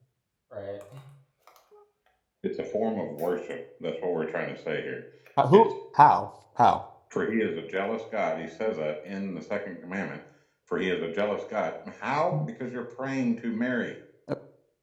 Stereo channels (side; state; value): both; identical; correlation 1.00